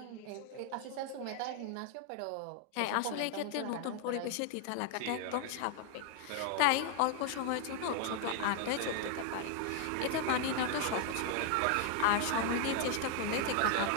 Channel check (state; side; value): different; both; correlation 0.00